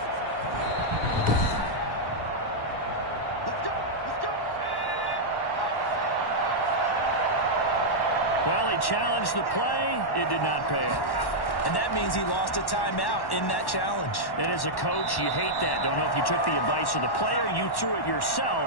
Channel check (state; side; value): late; right; 1.1 ms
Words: Well, he challenged the play. It did not pay off. And that means he lost a timeout in that challenge. And as a coach, you hate that. Don't know if you took the advice of the player, you threw it